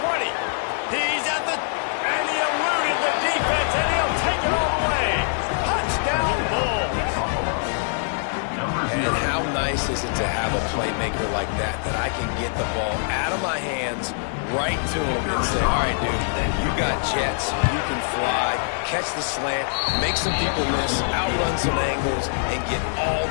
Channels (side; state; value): right; silent; digital silence